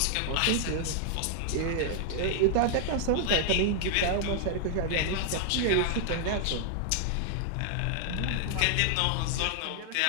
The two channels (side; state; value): both; different; correlation 0.00